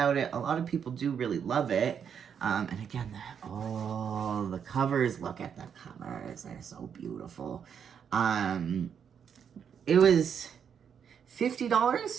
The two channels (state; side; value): quieter; left; 7.6 dB